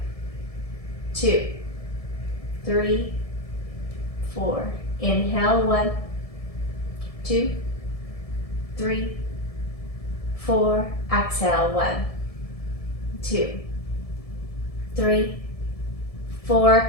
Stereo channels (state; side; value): late; right; 1.7 ms